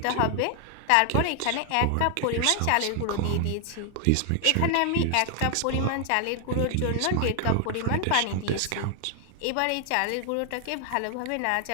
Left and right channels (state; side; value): different; both; correlation 0.00